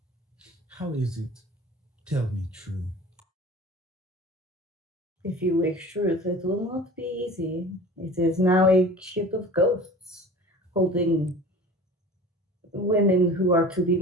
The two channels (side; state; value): both; normal; correlation 0.40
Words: How is it? Tell me true. If you wish truth, it will not be easy. It is now a ship of ghosts, holding women who are to be